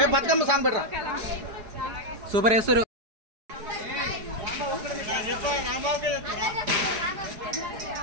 బతుకమ్మ సాంగ్ పెట్టరా సూపర్ వేస్తారు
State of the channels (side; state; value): left; late; 4.7 ms